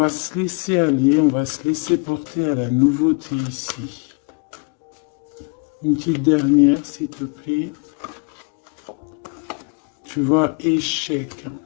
se laisser aller, on va se laisser porter à la nouveauté ici. Une petite dernière, s'il te plaît. Tu vois, échec.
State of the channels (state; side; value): quieter; right; 35.8 dB